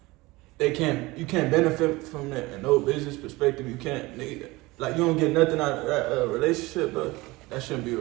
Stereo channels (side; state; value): left; quieter; 21.5 dB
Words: you can't benefit from that in no business perspective. You can't, nigga, like, you don't get nothing out of that relationship, but that shouldn't be a